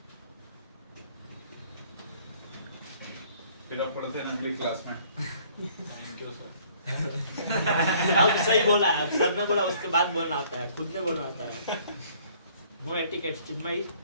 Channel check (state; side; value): inverted; both; correlation -0.58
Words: फिर आप पढ़ते हैं अगली क्लास में। Thank you sir. अब सही बोला, अब सर ने बोला उसके बाद बोलना आता है, खुद ने बोलना आता है। No etiquette Chinmayi.